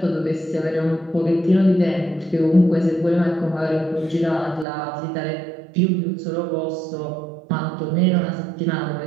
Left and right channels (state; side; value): drops out; left; at 4.7 s